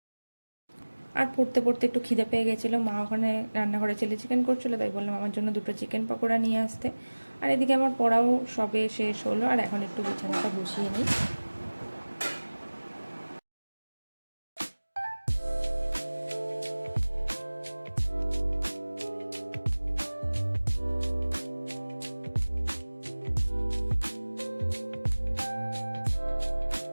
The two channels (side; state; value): both; inverted; correlation -1.00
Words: আর পড়তে পড়তে একটু খিদে পেয়ে গেছিলো। মা ওখানে রান্নাঘরে চিলি চিকেন করছিলো, তাই বললাম আমার জন্য দুটো চিকেন পকোড়া নিয়ে আসতে। আর এদিকে আমার পড়াও সবে শেষ হলো, আর এখন একটু বিছানাটা গুছিয়ে নিই।